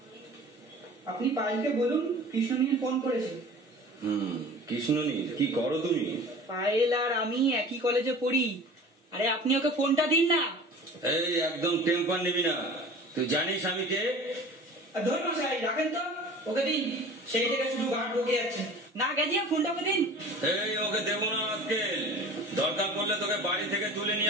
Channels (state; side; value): normal; both; correlation 0.42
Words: আপনি পায়েলকে বলুন কৃষ্ণনীল ফোন করেছে। কৃষ্ণনীল, কি করো তুমি? পায়েল আর আমি একই কলেজে পড়ি। আরে আপনি ওকে ফোনটা দিন না। এই একদম টেম্পার নিবি না, তুই জানিস আমি কে? ধর মশাই রাখেন তো, ওকে দিন। সেই থেকে শুধু গাঢ় ঢুকে যাচ্ছে। না গেছিয়া ফোনটা ওকে দিন। এই ওকে দেবো না আজকে, দরকার পড়লে তোকে বাড়ি থেকে তুলে